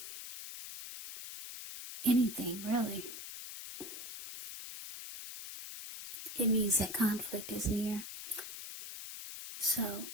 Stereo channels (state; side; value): noise; left; hiss, 9 dB below the sound